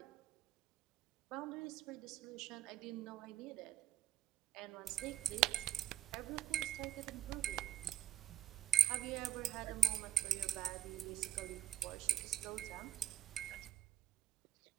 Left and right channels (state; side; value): quieter; left; 10.3 dB